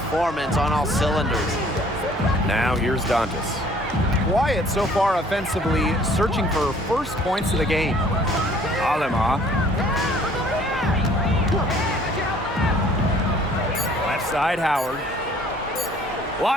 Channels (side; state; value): both; normal; correlation 0.56